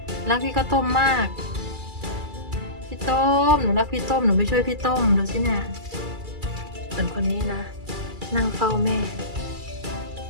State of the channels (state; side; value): late; left; 2.3 ms